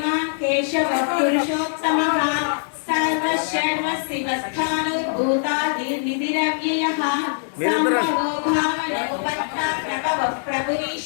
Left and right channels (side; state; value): right; silent; digital silence